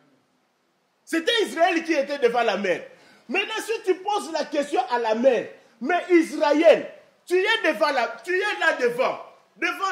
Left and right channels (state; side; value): identical; both; correlation 1.00